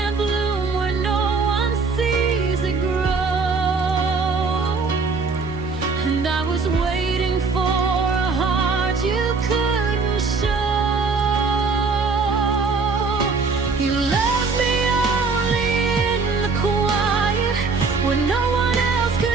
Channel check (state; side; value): quieter; left; 4.5 dB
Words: bloom where no one sees it grow, and I was waiting for a heart you couldn't show. You love me only in the quiet, where no one else